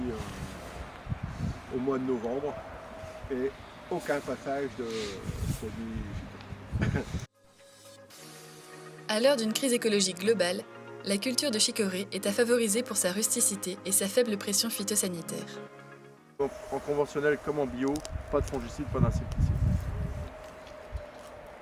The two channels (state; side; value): identical; both; correlation 1.00